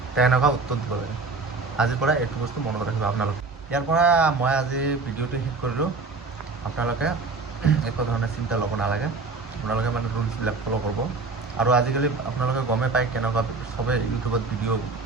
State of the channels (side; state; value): left; quieter; 4.0 dB